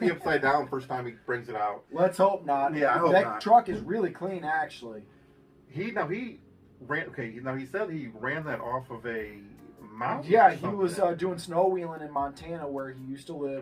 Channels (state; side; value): identical; both; correlation 1.00